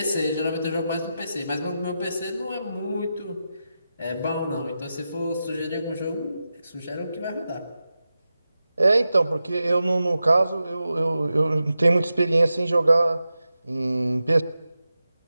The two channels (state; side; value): inverted; both; correlation -0.91